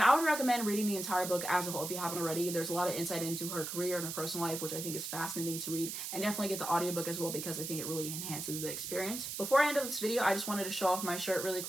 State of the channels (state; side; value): noise; right; hiss, 5 dB below the sound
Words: I would recommend reading the entire book as a whole if you haven't already. There's a lot of insight into her career and her personal life, which I think is fascinating to read. And definitely get the audiobook as well because I think it really enhances the experience. Before I end up this video, I just wanted to show off my shirt really